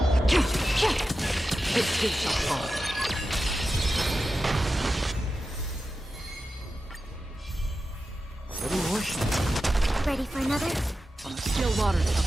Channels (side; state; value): both; normal; correlation 0.92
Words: It too shall fall. Ready for another? From the still waters of